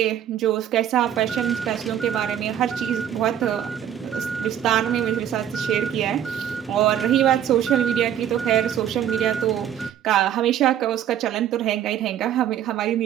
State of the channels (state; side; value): quieter; left; 10.1 dB